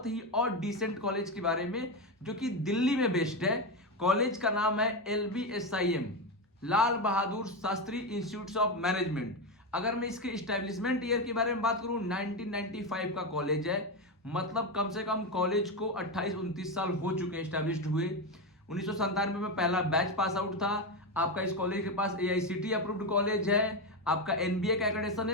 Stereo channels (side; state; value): both; normal; correlation 0.12